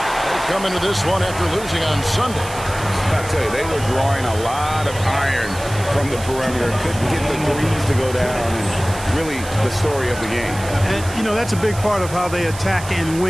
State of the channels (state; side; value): noise; right; hiss, 14 dB below the sound